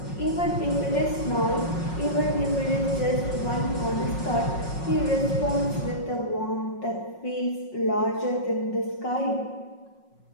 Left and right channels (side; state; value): right; late; 5.5 ms